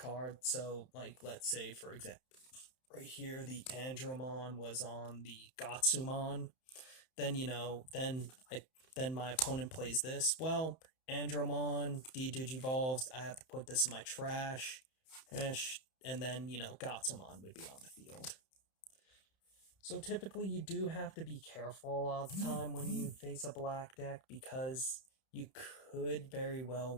So, like, let's say, for example, right here, the Andromon was on the Gatsumon. Then, then my opponent plays this. Well, Andromon de-digivolves. I have to put this in my trash. And then, Gatsumon would be on the field. So typically you do have to be careful a lot of the time when you face a black deck, because you could very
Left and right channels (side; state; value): right; late; 31 ms